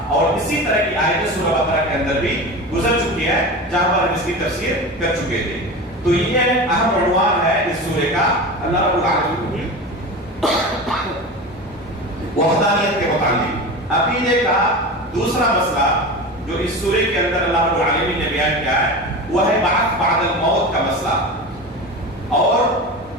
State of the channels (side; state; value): both; normal; correlation 0.28